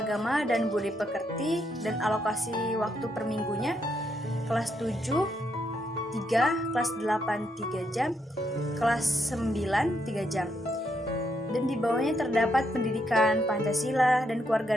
dan budi pekerti dan alokasi waktu per minggunya kelas 7 3, kelas 8 3 jam, kelas 9 3 jam. Dan di bawahnya terdapat pendidikan Pancasila dan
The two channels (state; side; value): normal; both; correlation 0.77